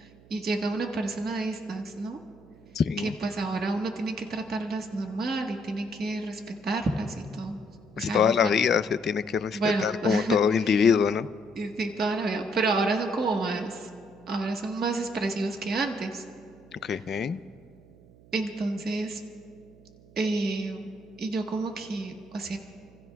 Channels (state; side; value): noise; right; hum, 24 dB below the sound